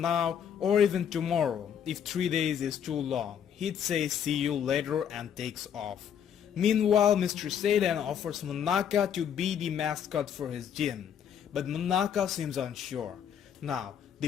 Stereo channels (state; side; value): quieter; right; 8.6 dB